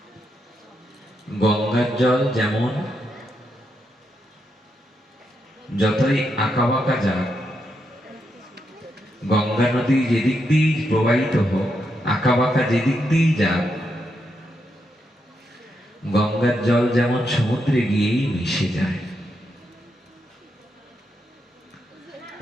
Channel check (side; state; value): both; normal; correlation 0.82